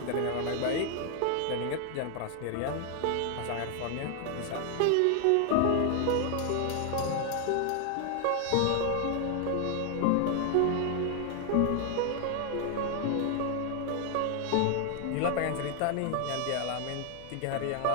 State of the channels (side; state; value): both; different; correlation 0.00